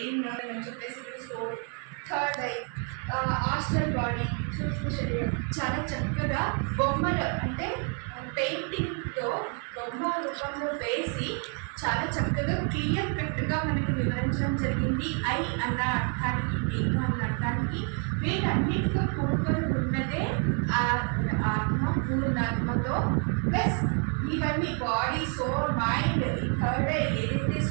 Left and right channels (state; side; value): quieter; left; 39.2 dB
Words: అని చెప్పేసి ఇక్కడ soul, third eye, astral body, సూక్ష్మ శరీరం. చాలా చక్కగా బొమ్మలు అంటే పెయింటింగ్తో బొమ్మ రూపంలో వేసి చాలా చక్కగా క్లియర్ కట్గా మనకి వివరించడం జరిగింది. ఐ అన్న అర్థానికి, నేను అన్న అర్థానికి వీటన్నిటితో కూడుకొని ఉన్నదే ఆత్మ, పూర్ణాత్మతో ప్లస్ ఇవన్నీ బాడీ, సోల్, మైండ్, థర్డ్ ఏదైతే